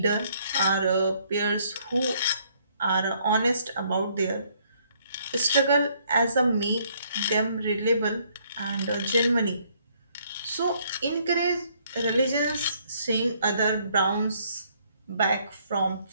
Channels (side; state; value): both; inverted; correlation -0.67